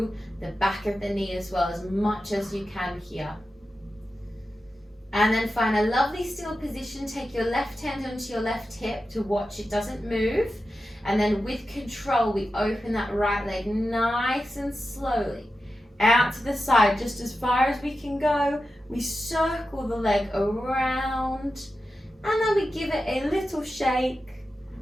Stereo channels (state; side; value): normal; both; correlation 0.92